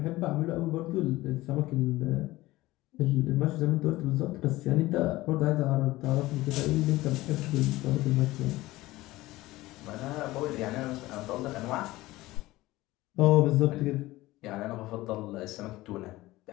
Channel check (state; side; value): quieter; right; 18.3 dB